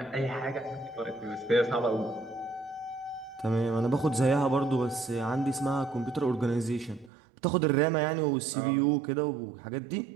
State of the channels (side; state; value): left; drops out; at 7.1 s